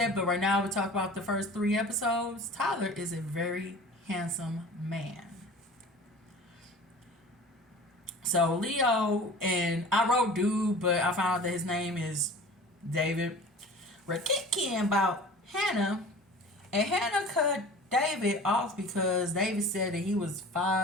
but right now we talk about the first 3 episodes. Tyler is a very handsome man. So Leo, and I wrote dude, but I found out that his name is David. We're kicking about Hannah, and Hannah cut David off because David said that he was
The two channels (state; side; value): normal; both; correlation 0.41